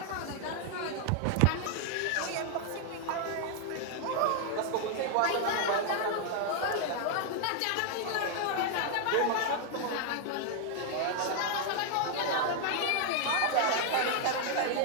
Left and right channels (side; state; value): both; different; correlation 0.00